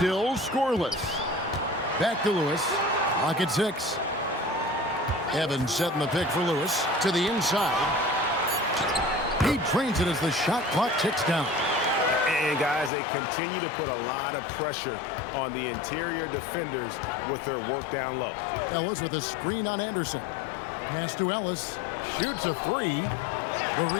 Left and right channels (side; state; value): right; drops out; at 12.9 s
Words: scoreless. Back to Lewis. Clock at 6. Evans setting the pick for Lewis to the inside. He drains it as the shot clock ticks down. And guys, they continue to put a lot of pressure on the interior defenders with their work down low. Ellis with a screen on Anderson. Pass to Ellis. Shoots a 3. The